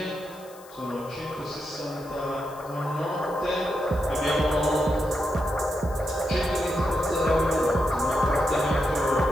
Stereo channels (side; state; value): left; noise; hiss, 23 dB below the sound